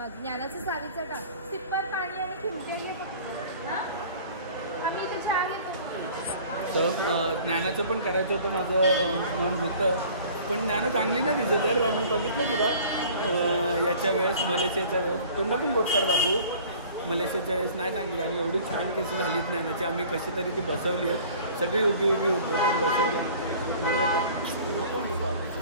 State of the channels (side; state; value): both; inverted; correlation -0.48